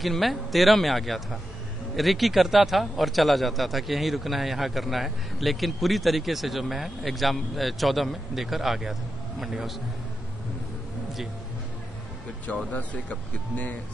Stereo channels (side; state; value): both; normal; correlation 0.89